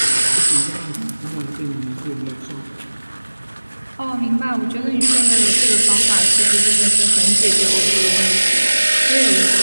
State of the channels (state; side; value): inverted; both; correlation -1.00